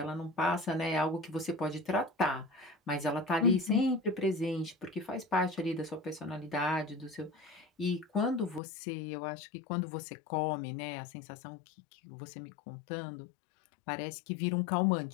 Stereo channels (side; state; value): right; drops out; at 8.6 s